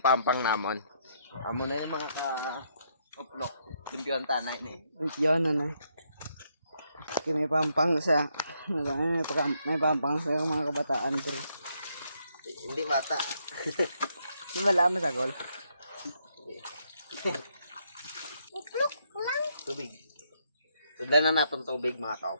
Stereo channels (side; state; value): both; inverted; correlation -0.75